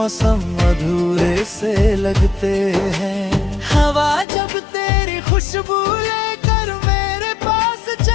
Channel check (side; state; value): right; drops out; at 4.2 s